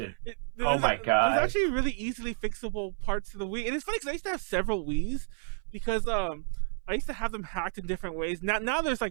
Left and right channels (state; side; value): silent; left; 58 dB below the other